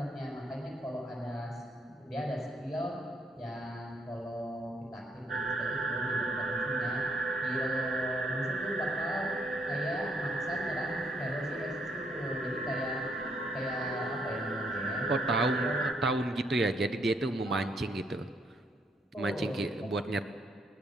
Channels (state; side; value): normal; both; correlation 0.71